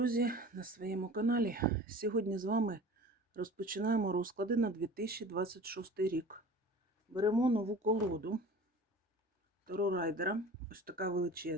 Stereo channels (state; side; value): normal; both; correlation 0.41